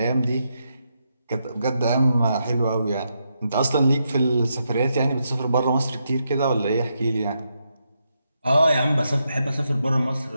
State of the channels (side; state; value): both; inverted; correlation -0.82